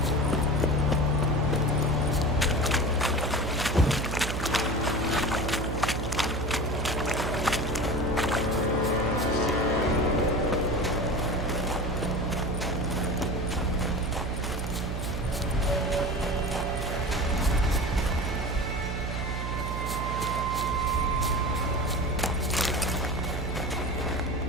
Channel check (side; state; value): right; noise; hum, 3 dB below the sound